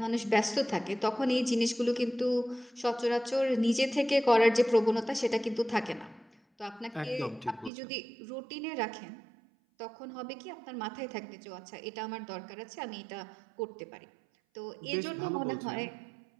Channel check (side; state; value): left; drops out; at 7.7 s